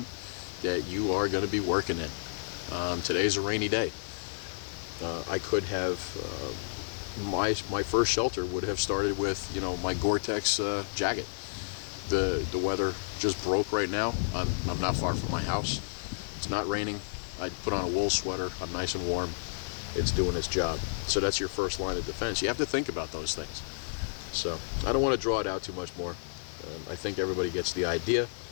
that you are going to be working in. Today's a rainy day. I could have, my first shelter would have started with, you know, my Gore-Tex jacket. The weather just broke right now. I'm not far from my house. It's not raining. I put on a wool sweater. I'm nice and warm. It's doing its job. So that's your first line of defense. You have to think about those things. So I don't want to draw it out too much more. I think everybody gets the idea.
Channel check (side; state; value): right; silent; digital silence